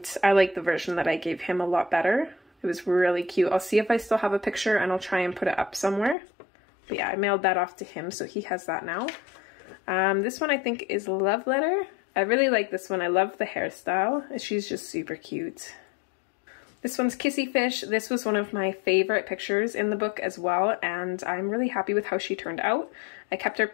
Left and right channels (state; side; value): drops out; right; at 6.2 s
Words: I like the version that I gave him a lot better. It was really cute. I'll see if I still have a picture and I'll try and put it up somewhere. But yeah, I mailed that off to him, so he has that now. This one I think is Love Letter. I really like this one. I love the hairstyle. She's just super cute. This one's Kissy Fish. This was one of my favorite pictures in the book as well, and I'm really happy with how she turned out. I kept her